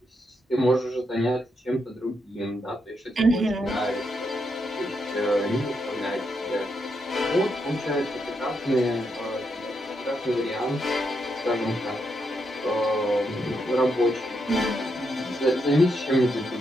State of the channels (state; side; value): normal; both; correlation 0.81